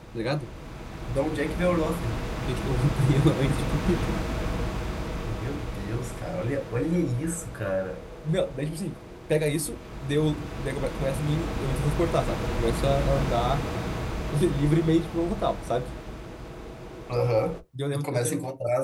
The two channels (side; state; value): both; identical; correlation 1.00